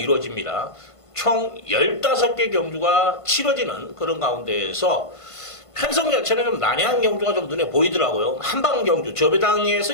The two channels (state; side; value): late; right; 1.5 ms